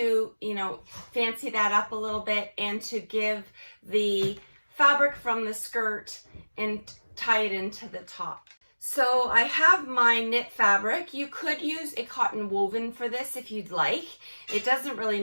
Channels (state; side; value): inverted; both; correlation -1.00